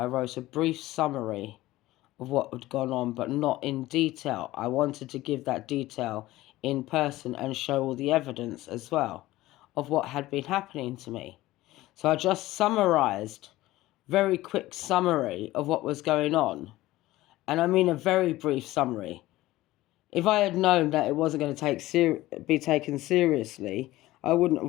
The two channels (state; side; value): quieter; right; 17.1 dB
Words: wrote a brief summary of what had gone on, but not in detail. I wanted to give that detail in person and show all the evidence as well of what had been happening to me. So I just summarised, very quick summary of what was going on. And I mean a very brief summary. If I had known that it wasn't going to be taken seriously, I wouldn't